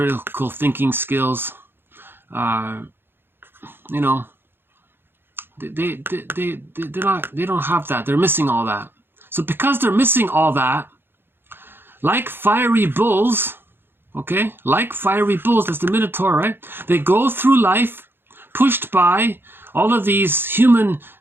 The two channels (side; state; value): left; late; 0.10 ms